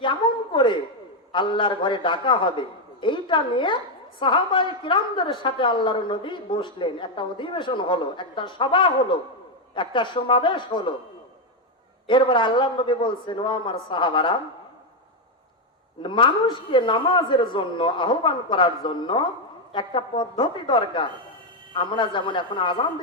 কেমন করে আল্লাহর ঘরে ডাকা হবে, এইটা নিয়ে সাহাবায়ে কিরামদের সাথে আল্লাহর নবী বসলেন। একটা অধিবেশন হলো, একটা সভা হলো, একটা সমাবেশ হলো। এরপর আল্লাহর নবী বলছেন, ও আমার সাহাবারা, মানুষকে নামাজের জন্য আহ্বান করার জন্য একটা পদ্ধতি দরকার। আমরা যেমন এখন আজান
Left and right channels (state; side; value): normal; both; correlation 0.04